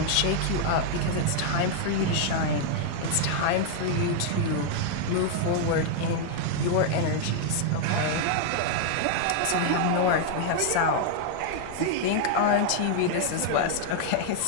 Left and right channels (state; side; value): different; both; correlation 0.00